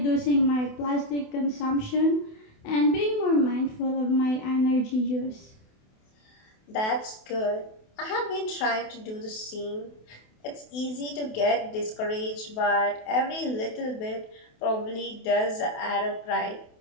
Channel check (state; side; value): late; right; 28 ms